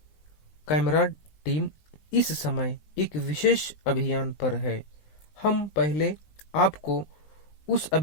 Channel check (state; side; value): late; right; 19 ms